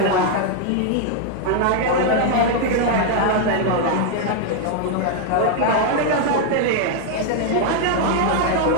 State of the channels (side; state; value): both; different; correlation 0.00